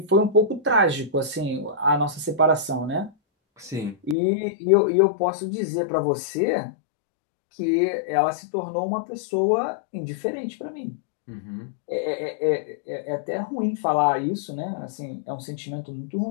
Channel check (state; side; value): drops out; right; at 4.2 s